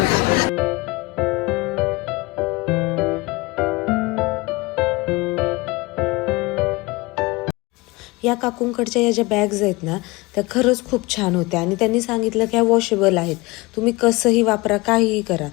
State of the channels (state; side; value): quieter; right; 23.3 dB